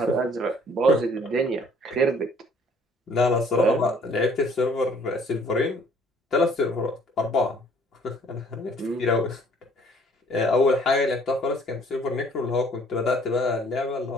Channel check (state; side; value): normal; both; correlation 0.58